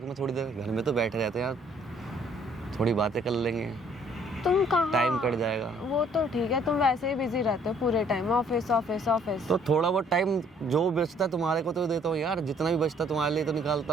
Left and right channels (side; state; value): both; normal; correlation 0.61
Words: में थोड़ी देर, घर में तो बैठे रहते यार, थोड़ी बातें कर लेंगे, तुम कहाँ? टाइम कट जाएगा। वो तो ठीक है, तुम वैसे ही बिजी रहते हो पूरे टाइम, ऑफिस ऑफिस ऑफिस। तो थोड़ा बहुत टाइम जो बचता है तुम्हारे को तो देता हूँ यार, जितना भी बचता है तुम्हारे लिए तो निकालता